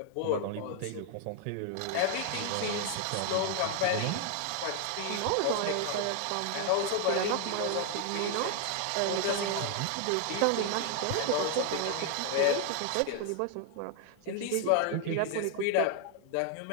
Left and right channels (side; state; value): both; different; correlation 0.00